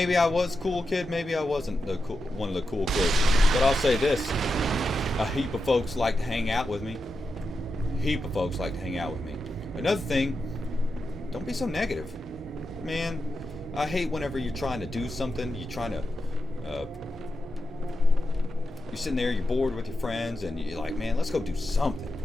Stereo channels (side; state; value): both; normal; correlation 0.89